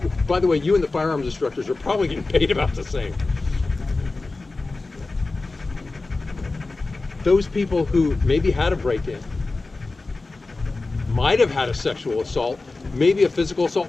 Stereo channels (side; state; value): right; quieter; 3.5 dB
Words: By the way, you and the firearms instructors are probably getting paid about the same. Those people who maybe had a break-in, might have had a sexual assault, maybe a physical